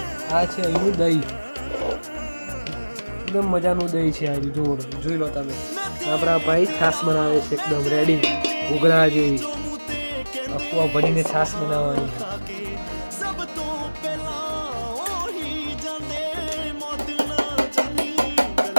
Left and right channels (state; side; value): inverted; both; correlation -1.00